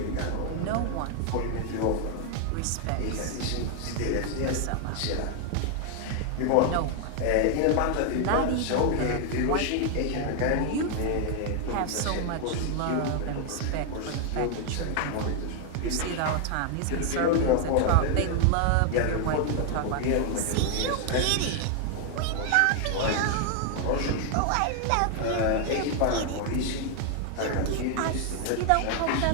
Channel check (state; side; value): different; both; correlation 0.00